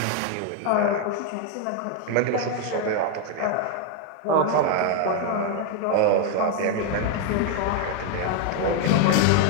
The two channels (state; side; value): different; both; correlation 0.01